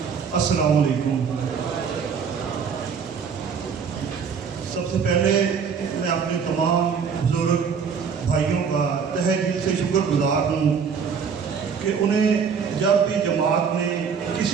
السلام علیکم۔ سب سے پہلے میں اپنے تمام بزرگ بھائیوں کا تہہ دل سے شکر گزار ہوں کہ انہیں جب بھی جماعت نے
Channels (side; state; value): left; quieter; 6.4 dB